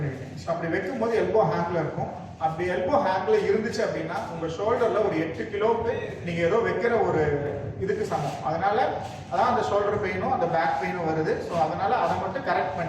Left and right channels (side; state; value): both; identical; correlation 1.00